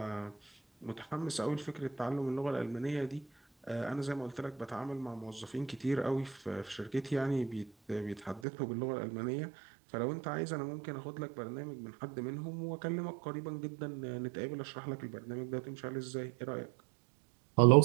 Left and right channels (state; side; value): drops out; left; at 8.4 s